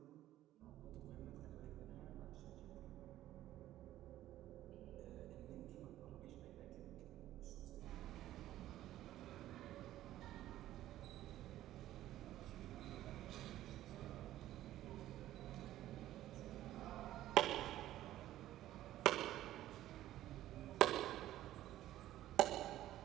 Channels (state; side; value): quieter; left; 13.9 dB